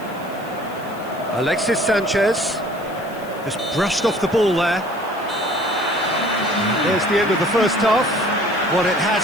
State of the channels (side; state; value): left; noise; hiss, 23 dB below the sound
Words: Alexis Sanchez. Just brushed off the ball there. There's the end of the first half. What it